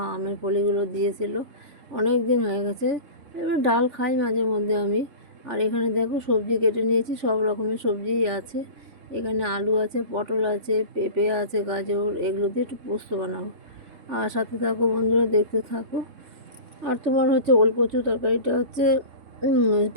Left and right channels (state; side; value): late; left; 3.4 ms